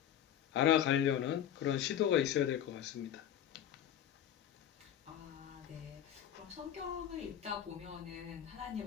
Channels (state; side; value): quieter; right; 10.2 dB